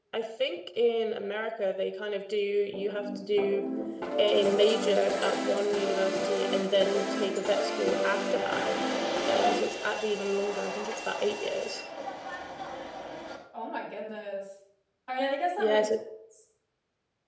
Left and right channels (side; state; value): both; identical; correlation 1.00